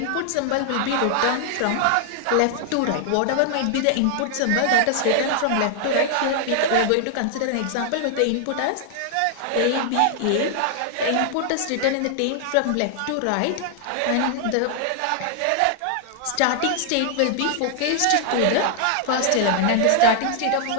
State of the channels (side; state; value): both; different; correlation 0.00